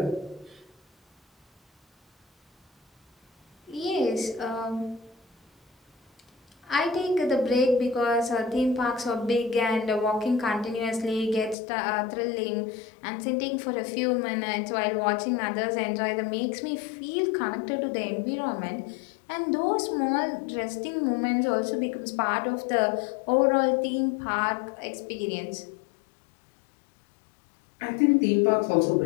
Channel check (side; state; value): right; drops out; at 11.6 s